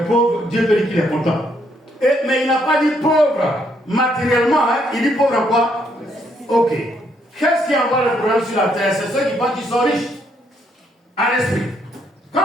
pauvre, Dieu peut dire qu'il est content? Mais il n'a pas dit pauvre matériellement, hein? Il dit pauvre en quoi? Ok. Qu'est-ce qui envoie le problème sur la terre? C'est ceux qui pensent qu'ils sont riches en esprit.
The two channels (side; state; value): both; normal; correlation 0.72